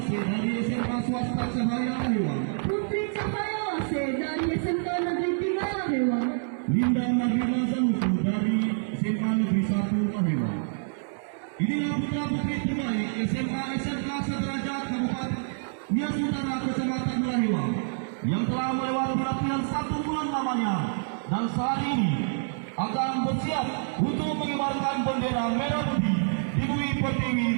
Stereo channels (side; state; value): left; silent; 60 dB below the other